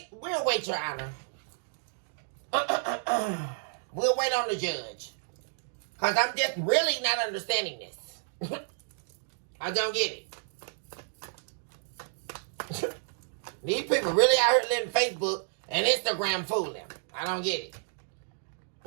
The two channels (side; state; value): left; silent; digital silence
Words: We'll wait, Your Honor. We'll wait on the judge. Because I'm just really not understanding this. I don't get it. These people really out here letting Facebook and Instagram fool them. I don't get